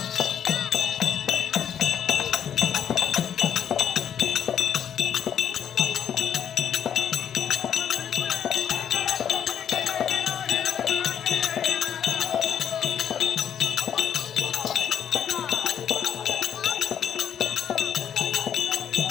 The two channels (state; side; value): quieter; right; 9.0 dB